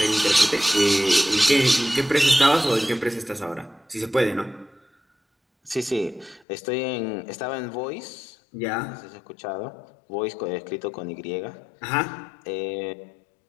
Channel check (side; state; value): right; drops out; at 6.5 s